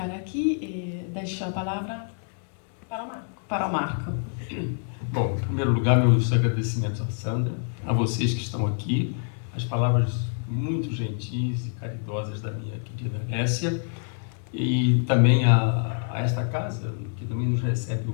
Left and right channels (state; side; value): silent; right; 61 dB below the other